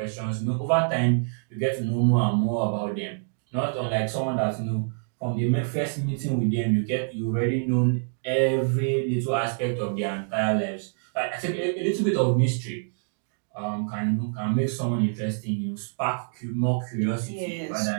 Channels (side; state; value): left; silent; digital silence